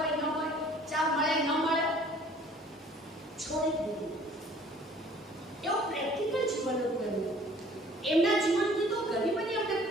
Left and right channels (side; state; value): both; normal; correlation 0.53